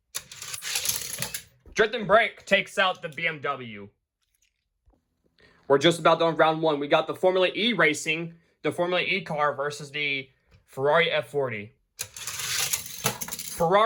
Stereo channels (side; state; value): both; identical; correlation 1.00